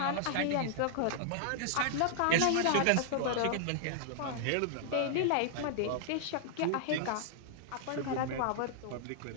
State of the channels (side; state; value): both; different; correlation -0.01